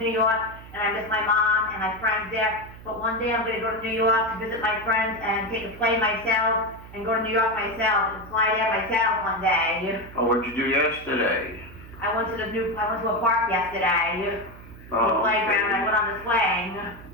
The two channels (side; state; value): right; noise; hum, 17 dB below the sound